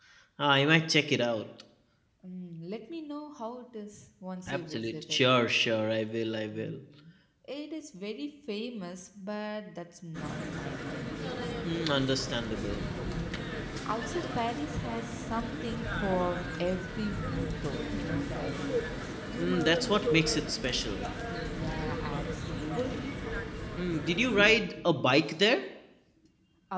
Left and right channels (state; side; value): identical; both; correlation 1.00